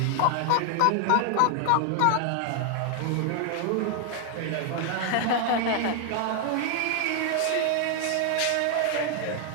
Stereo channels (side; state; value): both; different; correlation 0.00